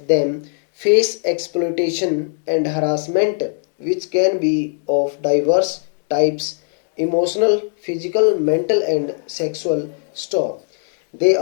them face exploitation and harassment, which can be of diverse types emotional, physical, mental, and sexual. Stop. They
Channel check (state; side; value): silent; right; digital silence